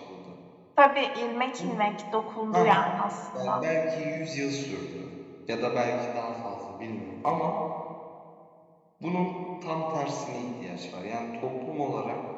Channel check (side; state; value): both; identical; correlation 1.00